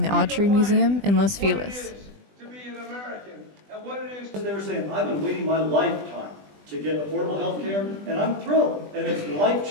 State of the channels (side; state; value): left; late; 20 ms